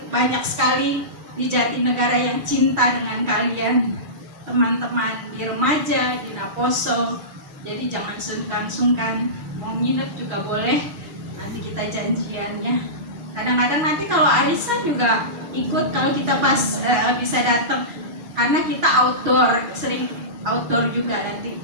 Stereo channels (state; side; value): late; left; 6.3 ms